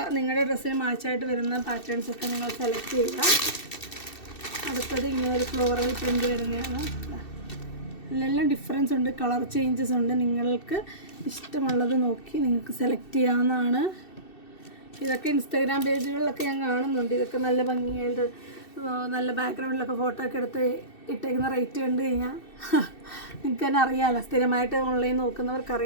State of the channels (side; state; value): right; late; 2.6 ms